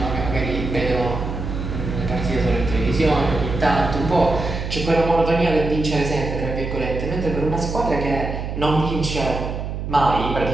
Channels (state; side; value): noise; right; hum, 5 dB below the sound